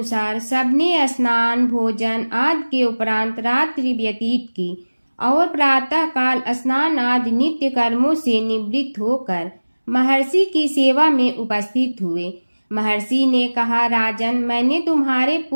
सबने स्नान भोजन आदि के उपरांत रात्रि व्यतीत की और प्रातः काल स्नान आदि नित्य कर्मों से निवृत्त होकर महर्षि की सेवा में उपस्थित हुए। महर्षि ने कहा, राजन, मैंने तुम्हारे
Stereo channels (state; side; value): inverted; both; correlation -1.00